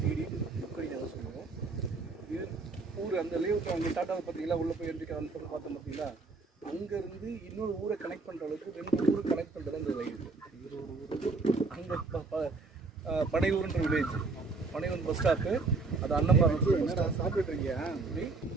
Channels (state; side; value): quieter; left; 3.9 dB